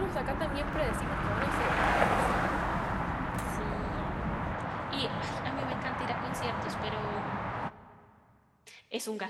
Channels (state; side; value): identical; both; correlation 1.00